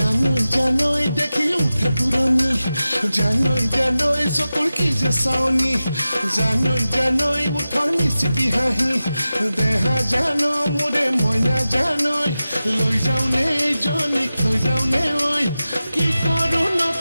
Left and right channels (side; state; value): both; inverted; correlation -0.94